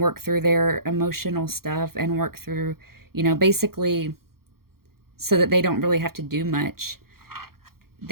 through their emotional stuff and work through, you know, basically so that they don't really have to do much.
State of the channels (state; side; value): late; left; 0.93 ms